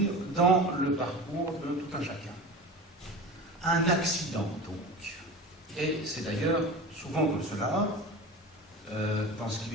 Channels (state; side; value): normal; both; correlation 0.32